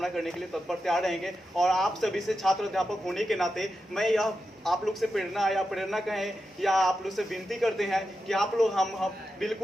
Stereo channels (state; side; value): normal; both; correlation 0.89